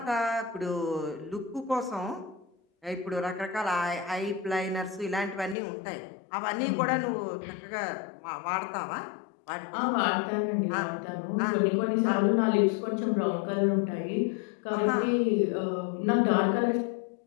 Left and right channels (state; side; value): drops out; right; at 5.6 s